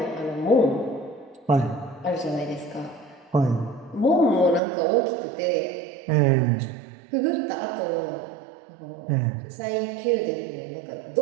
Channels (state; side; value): drops out; left; at 4.6 s